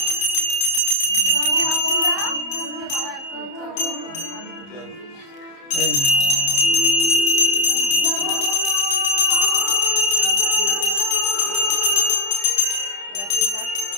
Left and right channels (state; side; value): late; right; 30 ms